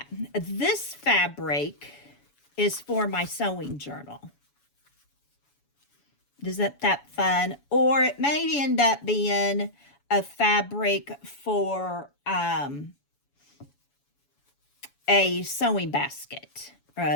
This fabric is for my sewing journal. Isn't that fun? Or it may end up being a fabric for a sewing basket, or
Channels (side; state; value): right; late; 7.0 ms